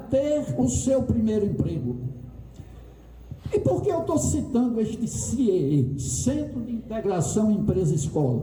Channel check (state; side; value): identical; both; correlation 1.00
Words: o seu primeiro emprego. E por que eu estou citando este CIEE, Centro de Integração